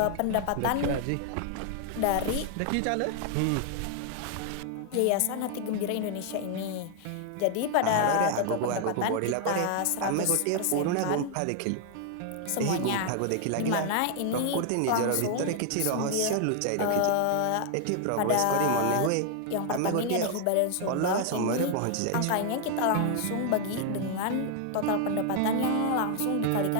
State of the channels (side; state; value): both; different; correlation 0.00